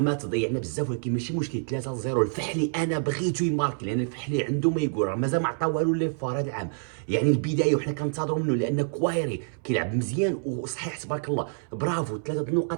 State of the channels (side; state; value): left; silent; 60 dB below the other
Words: تضيعنا بزاف، ولكن ماشي مشكل. 3-0 الفحلي انا بغيتو يماركي لان الفحلي عنده ما يقول، راه مازال ما عطا والو لي فار هذا العام. يعني البدايه وحنا كنتظروا منه لان كوايري كيلعب مزيان وصحيح تبارك الله. برافو 3